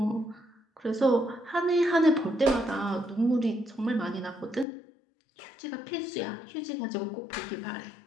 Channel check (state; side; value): drops out; right; at 4.7 s